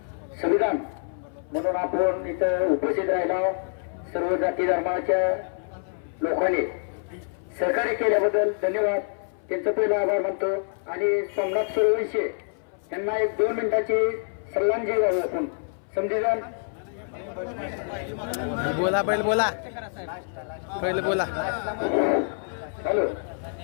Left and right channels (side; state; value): right; silent; 61 dB below the other